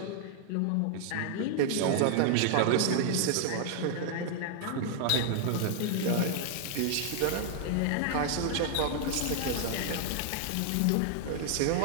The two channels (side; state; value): both; different; correlation 0.00